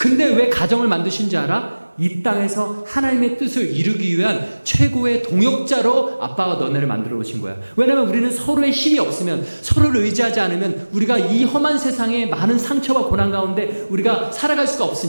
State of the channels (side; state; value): both; inverted; correlation -1.00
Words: 왜 가정을 만드신 줄 알아? 이 땅에서 하나님의 뜻을 이루기 위한 최고의 동역자로 아빠가 너네를 만들어 놓으신 거야. 왜냐면 우리는 서로의 힘이 없으면, 서로를 의지하지 않으면 우리가 이 험한 세상에 많은 상처와 고난 가운데 우리가 살아갈 수가